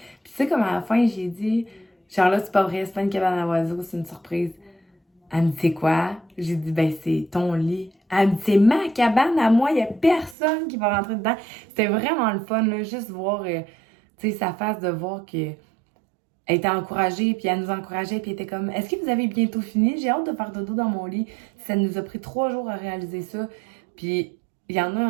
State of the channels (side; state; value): left; drops out; at 10.4 s